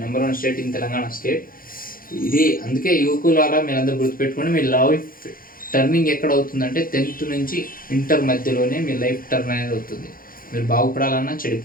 number 1 state in Telangana state ఇది. అందుకే యువకులారా మీరందరూ గుర్తుపెట్టుకోండి, మీ లైఫ్ టర్నింగ్ ఎక్కడ అవుతుందంటే 10th నుంచి ఇంటర్ మధ్యలోనే మీ లైఫ్ టర్న్ అనేది అవుతుంది. మీరు బాగుపడాలన్నా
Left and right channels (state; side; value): late; right; 0.41 ms